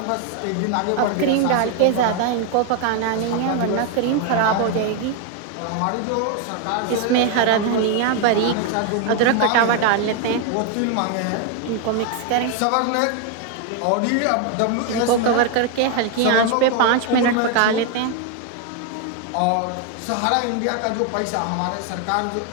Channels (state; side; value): different; both; correlation 0.01